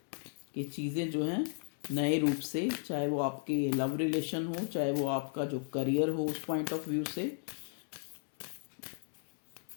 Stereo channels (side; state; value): right; silent; digital silence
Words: कि चीज़ें जो हैं नए रूप से, चाहे वो आपके लव रिलेशन हो, चाहे वो आपका जो करियर हो, उस पॉइंट ऑफ व्यू से